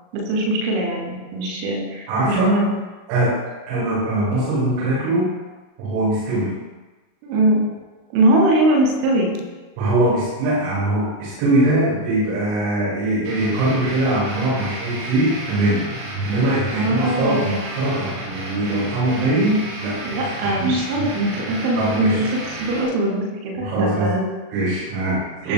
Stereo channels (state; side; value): late; left; 39 ms